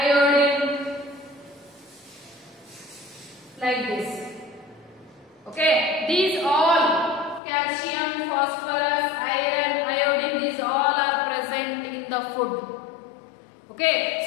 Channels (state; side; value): drops out; right; at 7.4 s